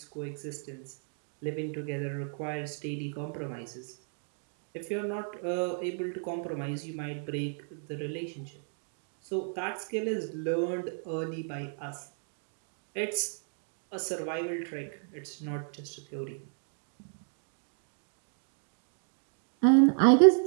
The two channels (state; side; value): silent; left; 56 dB below the other